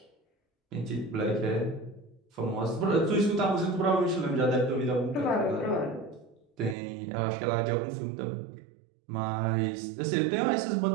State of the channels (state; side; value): drops out; left; at 6.8 s